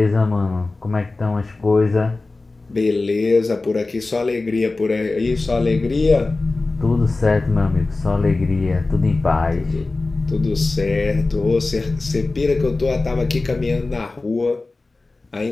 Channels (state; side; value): quieter; right; 3.4 dB